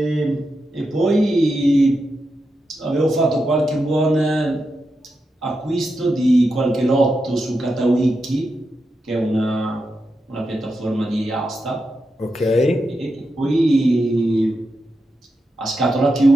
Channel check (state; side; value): normal; both; correlation 0.87